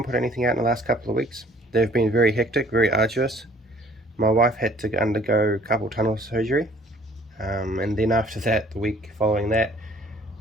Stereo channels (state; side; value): normal; both; correlation 0.56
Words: put anything out in the last couple of weeks. They've been very hectic, very arduous. My wife had to undergo carpal tunnel surgery, and then after that, the week following that,